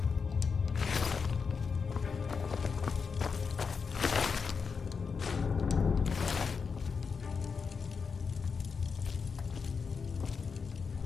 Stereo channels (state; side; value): quieter; right; 5.5 dB